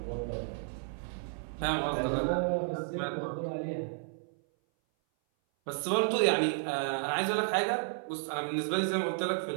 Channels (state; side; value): silent; left; 56 dB below the other